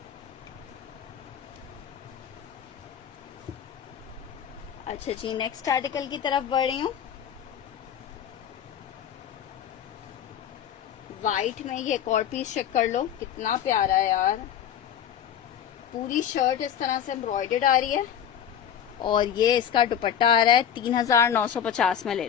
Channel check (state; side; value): quieter; right; 9.2 dB